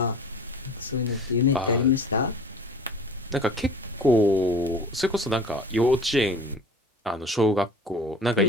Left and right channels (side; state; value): both; normal; correlation 0.43